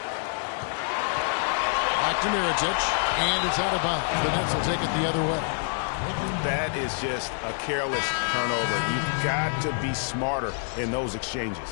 Back to Mirotic. And it's out of bounds. The Nets will take it the other way. That is just a careless turnover. You've got to be smarter in those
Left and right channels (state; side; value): silent; right; 60 dB below the other